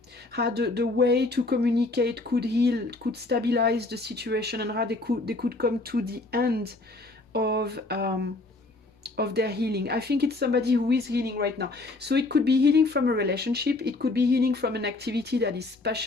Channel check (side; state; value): right; quieter; 3.1 dB